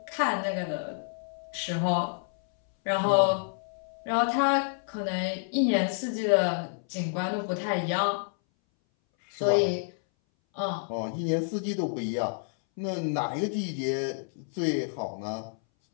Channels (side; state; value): right; silent; 59 dB below the other